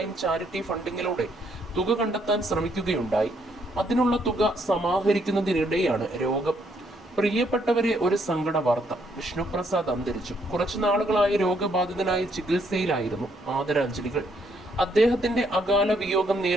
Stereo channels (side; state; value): both; normal; correlation 0.71